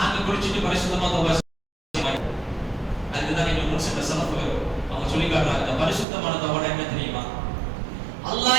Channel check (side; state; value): left; drops out; at 6.1 s